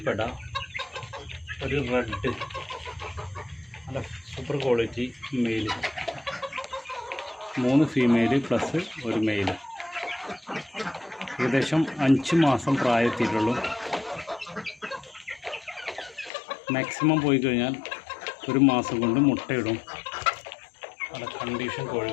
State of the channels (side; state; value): right; drops out; at 16.3 s